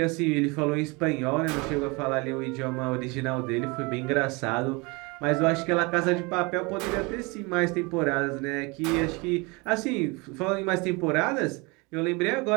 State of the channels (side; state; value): left; quieter; 27.3 dB